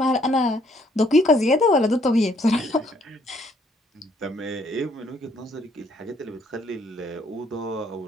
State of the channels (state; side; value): normal; both; correlation 0.66